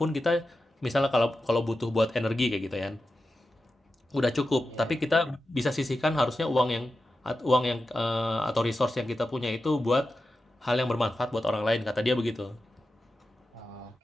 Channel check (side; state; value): both; normal; correlation 0.91